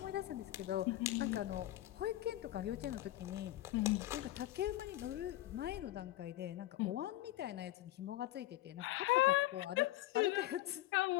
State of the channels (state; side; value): quieter; right; 15.6 dB